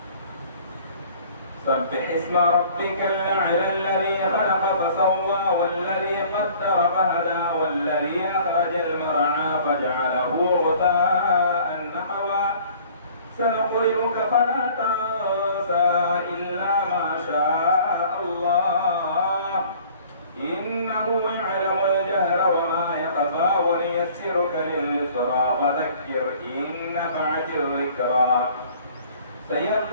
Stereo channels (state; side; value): inverted; both; correlation -0.52